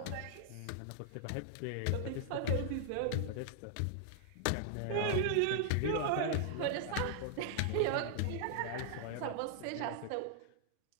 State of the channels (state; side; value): different; both; correlation 0.00